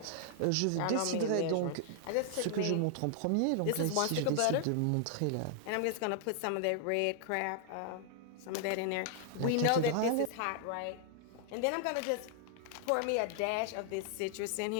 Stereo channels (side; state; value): both; different; correlation 0.00